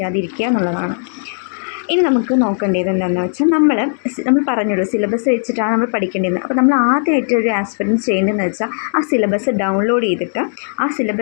എന്നുള്ളതാണ്. ഇനി നമുക്ക് നോക്കേണ്ടത് എന്താണെന്ന് വെച്ചാൽ, നമ്മൾ പറഞ്ഞല്ലോ സിലബസ് വെച്ചിട്ടാണ് നമ്മൾ പഠിക്കേണ്ടത്. അപ്പോൾ നമ്മൾ ആദ്യമായിട്ട് ഒരു ആസ്പിരൻറ്റ് ചെയ്യേണ്ടതെന്ന് വെച്ചാൽ, ആ സിലബസ് ഡൗൺലോഡ് ചെയ്തിട്ട് ആ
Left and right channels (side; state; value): right; silent; digital silence